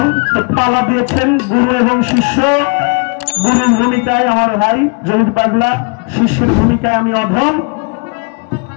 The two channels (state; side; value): quieter; right; 33.5 dB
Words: তো পালা দিয়েছেন গুরু এবং শিষ্য। গুরুর ভূমিকায় আমার ভাই জহির পাগলা, শিষ্যের ভূমিকায় আমি অধম।